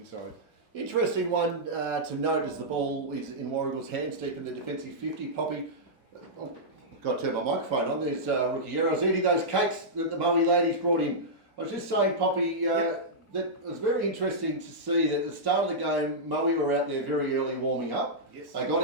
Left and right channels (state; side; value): normal; both; correlation -0.11